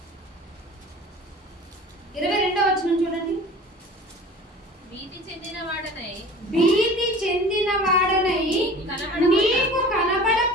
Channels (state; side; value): normal; both; correlation 0.42